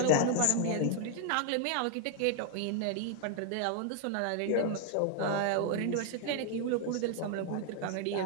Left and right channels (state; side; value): different; both; correlation 0.00